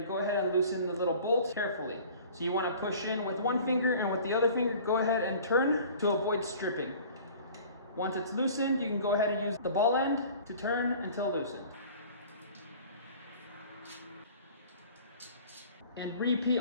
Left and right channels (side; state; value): both; inverted; correlation -0.46